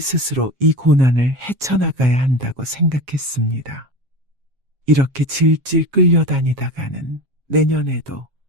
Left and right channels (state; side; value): late; left; 7.4 ms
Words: 이 고난을 헤쳐나가야 한다고 생각했습니다. 이렇게 질질 끌려다니다가는 내년에도